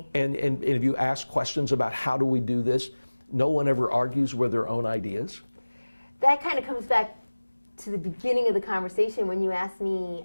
And if you ask questions about how do we do this, no one ever argues with their own ideas. That kind of comes back to the beginning of the conversation when you asked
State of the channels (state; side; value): inverted; both; correlation -1.00